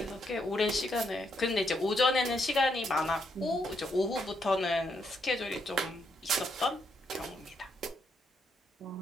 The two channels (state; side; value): normal; both; correlation 0.77